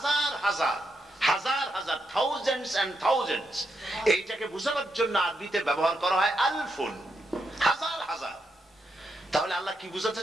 হাজার হাজার হাজার, থাউজেন্ডস এন্ড থাউজেন্ডস, এইটাকে বোঝানোর জন্য আরবিতে ব্যবহার করা হয় আলফুন, হাজার হাজার। তাহলে আল্লাহ কি বুঝাতে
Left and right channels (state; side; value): normal; both; correlation 0.82